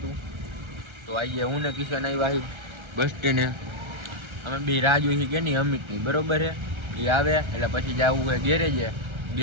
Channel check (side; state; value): left; late; 1.3 ms